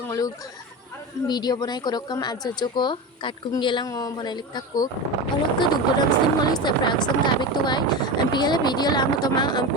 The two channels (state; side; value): normal; both; correlation 0.23